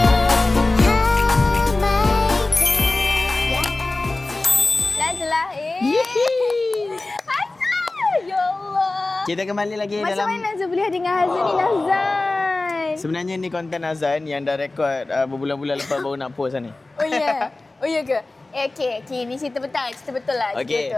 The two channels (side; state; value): right; quieter; 3.1 dB